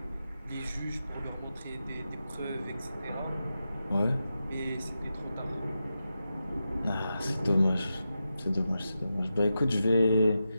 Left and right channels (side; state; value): both; inverted; correlation -0.90